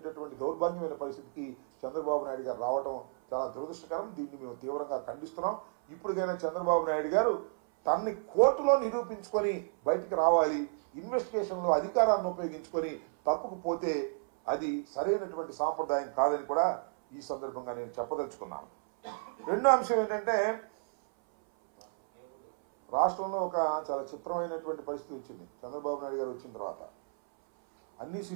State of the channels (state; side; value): silent; left; 56 dB below the other